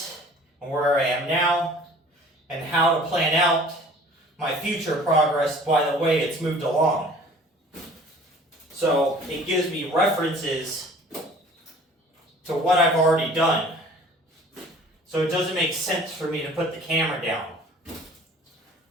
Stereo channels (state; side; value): normal; both; correlation 0.49